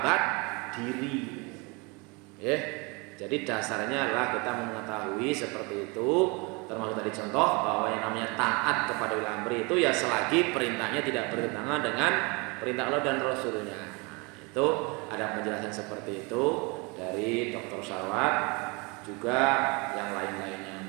diri. Jadi dasarnya adalah kita mengetahui seperti itu, termasuk tadi contoh bahwa yang namanya taat kepada ulil amri itu ya selagi perintahnya tidak bertentangan dengan perintah Allah dan Rasulnya. Itu ada penjelasan seperti itu dari Dr. Syarwat. Juga yang lain-lainnya,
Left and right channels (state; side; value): quieter; left; 29.0 dB